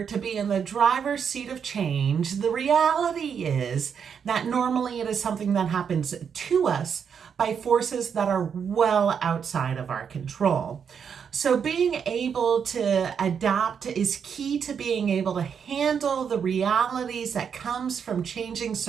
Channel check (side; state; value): left; quieter; 7.1 dB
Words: to be in the driver's seat of change, the reality is that normally it is something that happens to us by forces that are well outside of our control. So being able to adapt is key to being able to handle the realities that comes from changing